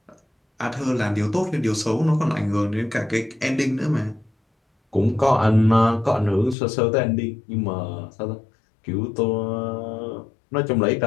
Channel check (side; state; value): right; drops out; at 6.6 s